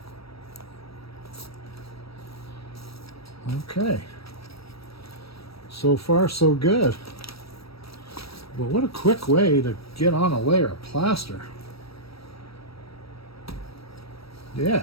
Okay, so far so good. But what a quick way to get on a layer of plaster. Yeah.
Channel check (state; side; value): late; right; 0.76 ms